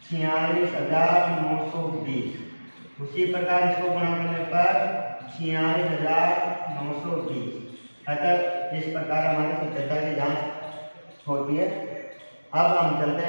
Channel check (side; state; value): both; inverted; correlation -1.00